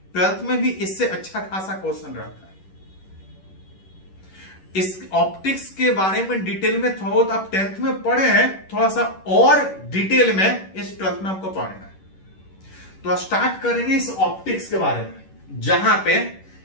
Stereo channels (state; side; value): late; right; 11 ms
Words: 12th में भी इससे अच्छा खासा क्वेश्चन रहता है। इस ऑप्टिक्स के बारे में डिटेल में थोड़ा बहुत आप 10th में पढ़े हैं, थोड़ा सा और डिटेल में इस 12th में आपको पढ़ना है। तो स्टार्ट करेंगे इस ऑप्टिक्स के बारे में, जहां पे